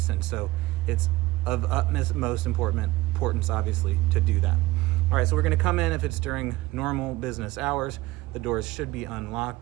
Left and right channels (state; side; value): quieter; left; 18.9 dB